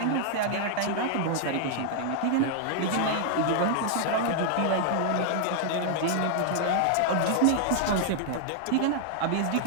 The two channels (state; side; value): different; both; correlation -0.01